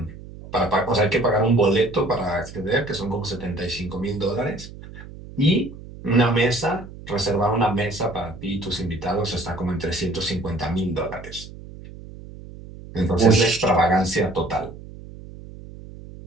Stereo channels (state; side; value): noise; right; hum, 15 dB below the sound